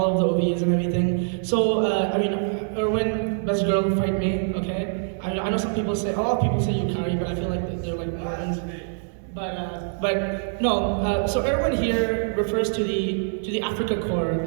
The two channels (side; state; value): left; silent; digital silence